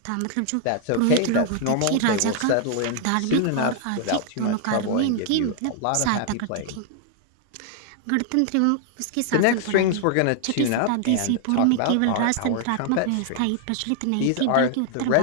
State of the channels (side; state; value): both; different; correlation 0.00